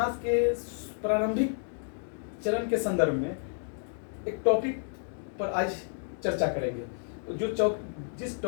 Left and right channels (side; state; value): right; silent; 57 dB below the other